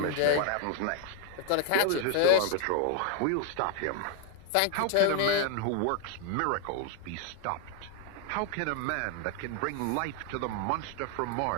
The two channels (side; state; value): both; different; correlation 0.00